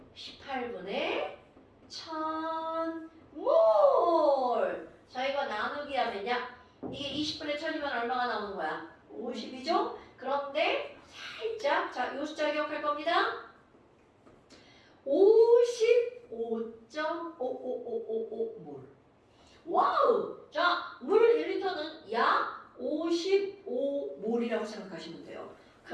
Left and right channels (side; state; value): both; identical; correlation 1.00